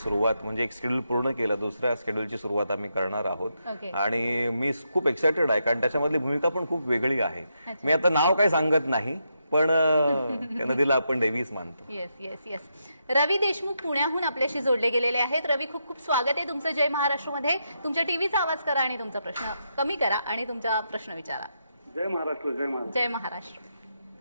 म्हणजे एक शेड्यूल पूर्ण केलं, दुसऱ्या शेड्यूलची सुरुवात आम्ही करणार आहोत. आणि मी खूप एक्सायटेड आहे कारण त्याच्यामधली भूमिका पण खूप वेगळी आहे. मी आता नाव काही सांगत नाही, पण त्या नदीला आपण देवीच मानतो. येस. रवी देशमुख पुण्याहून आपल्याशी जोडले गेलेले आहेत. रवी, खूप खूप स्वागत आहे तुमचं जय महाराष्ट्रमध्ये. तुमच्या टीव्हीचा आवाज करा आणि तुमचा प्रश्न कमी करा आणि तुमचा प्रश्न विचारा. जय महाराष्ट्र. जय महाराष्ट्र.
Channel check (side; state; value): both; inverted; correlation -0.82